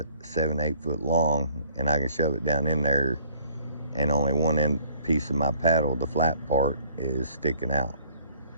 7, 8 foot long, and I can shove it down in there, and only one end piece of my paddle, the flat part, is sticking out.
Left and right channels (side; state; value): both; inverted; correlation -0.58